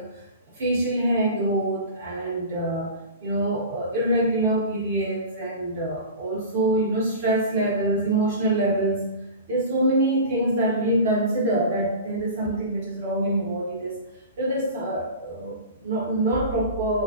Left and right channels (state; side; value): inverted; both; correlation -0.34